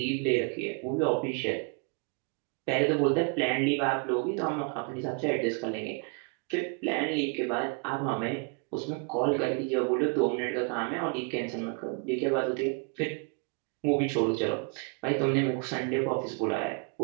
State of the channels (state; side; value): quieter; left; 36.1 dB